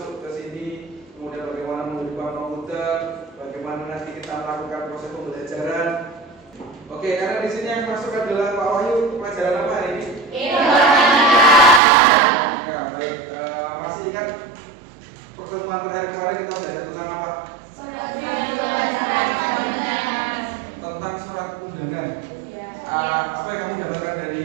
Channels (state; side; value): drops out; left; at 11.8 s